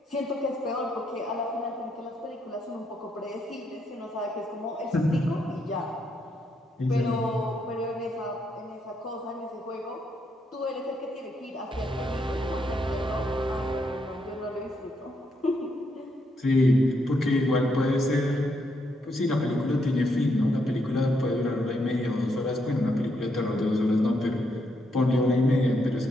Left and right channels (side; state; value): both; normal; correlation 0.77